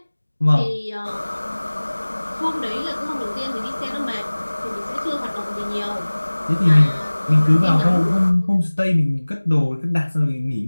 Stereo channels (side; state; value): both; inverted; correlation -1.00